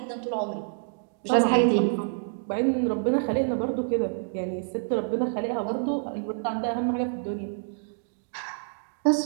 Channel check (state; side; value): silent; left; digital silence